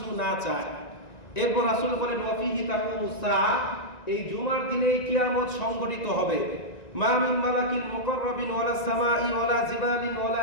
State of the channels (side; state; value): right; late; 1.9 ms